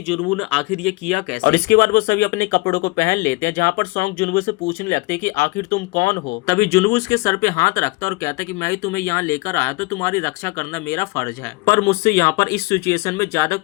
जुनवू ने आखिर ये किया कैसे। और इसके बाद वो सभी अपने कपड़ों को पहन लेते हैं, जहाँ पर सॉन्ग जुनवू से पूछने लगते हैं कि आखिर तुम कौन हो। तभी जुनवू उसके सर पे हाथ रखता और कहता है कि मैं ही तुम्हें यहाँ लेकर आया तो तुम्हारी रक्षा करना मेरा फर्ज है, पर मुझसे यहाँ पर इस सिचुएशन में ज्यादा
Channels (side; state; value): right; quieter; 24.5 dB